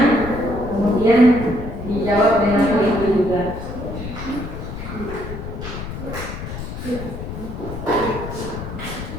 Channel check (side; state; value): left; noise; rumble, 8 dB below the sound